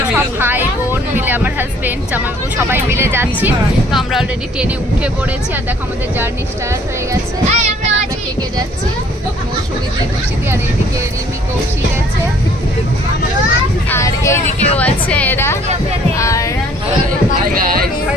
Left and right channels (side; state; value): both; normal; correlation 0.58